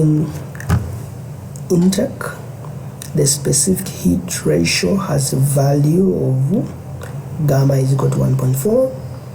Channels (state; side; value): identical; both; correlation 1.00